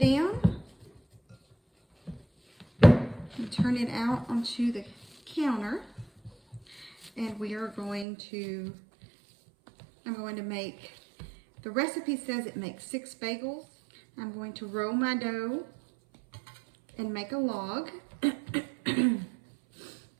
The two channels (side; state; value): left; drops out; at 8.1 s